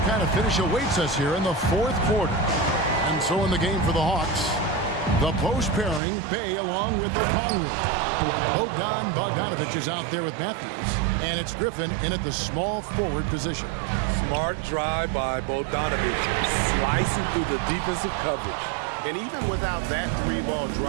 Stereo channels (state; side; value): drops out; left; at 6.0 s